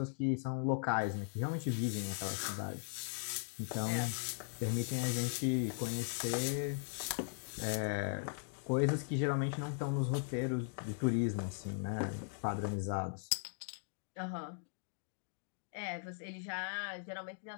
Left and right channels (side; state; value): right; silent; digital silence